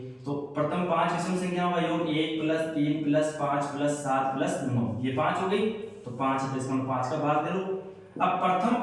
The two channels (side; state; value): both; identical; correlation 1.00